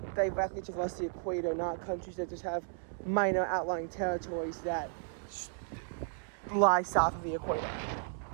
directly traverse the equator, not countries that just have minor outlying territories that lie south of the equator.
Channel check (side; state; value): left; silent; digital silence